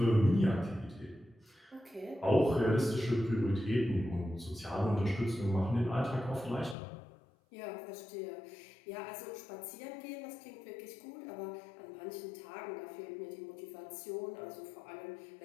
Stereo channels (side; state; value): right; drops out; at 6.8 s